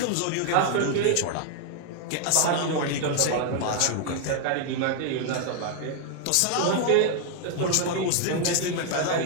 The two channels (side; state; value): both; different; correlation 0.00